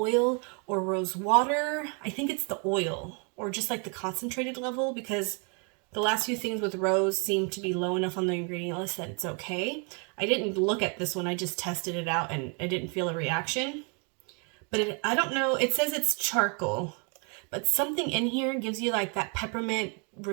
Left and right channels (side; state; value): left; quieter; 36.4 dB